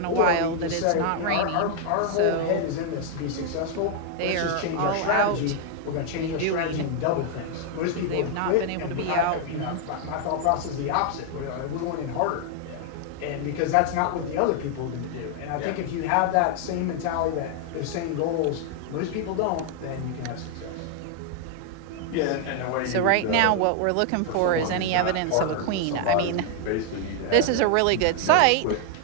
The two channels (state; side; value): different; both; correlation 0.00